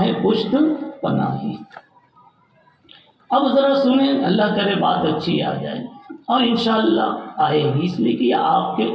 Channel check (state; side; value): identical; both; correlation 1.00